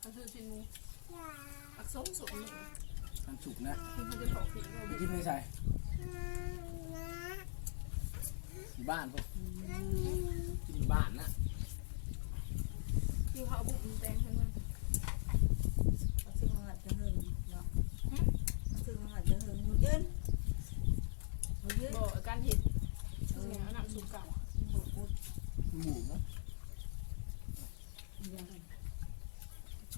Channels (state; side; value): silent; right; 51 dB below the other